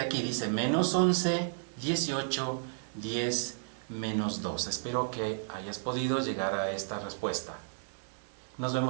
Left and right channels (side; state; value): left; silent; digital silence